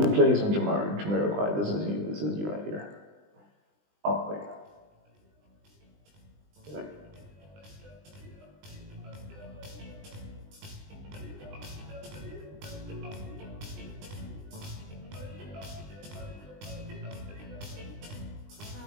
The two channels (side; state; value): left; late; 20 ms